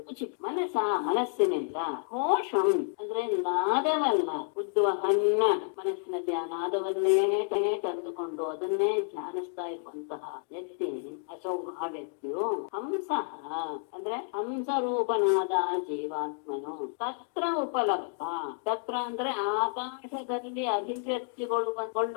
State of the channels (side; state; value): right; silent; 56 dB below the other